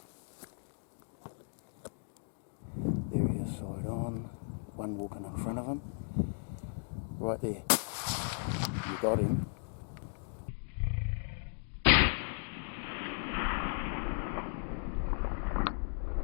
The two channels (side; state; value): right; silent; digital silence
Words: There he is, side on. One walking in front of him. Right there. You got him.